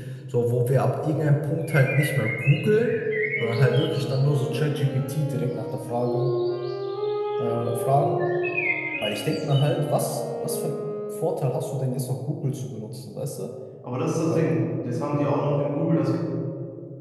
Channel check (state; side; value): identical; both; correlation 1.00